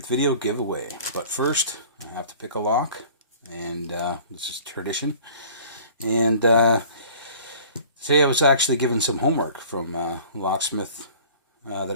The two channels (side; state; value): both; inverted; correlation -0.47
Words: video giveaway. But first, I have to pick a lock, and this is tradition. And today I was actually given some homework from a locksmith